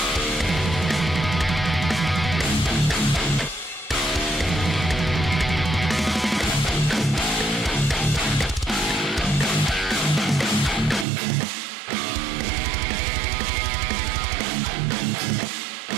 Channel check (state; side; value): drops out; left; at 11.1 s